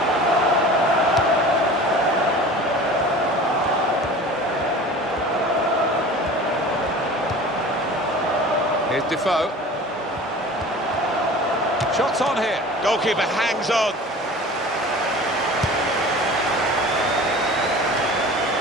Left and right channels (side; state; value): both; normal; correlation 0.40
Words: Defoe. Shots on here. Goalkeeper hangs on.